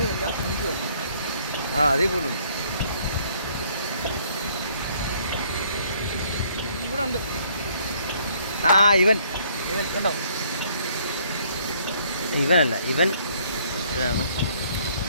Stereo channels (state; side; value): inverted; both; correlation -0.63